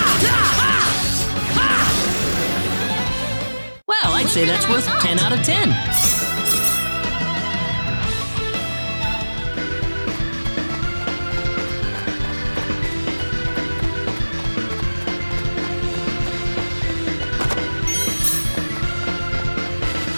Well, I'd say that's worth 10 out of 10.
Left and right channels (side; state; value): both; inverted; correlation -1.00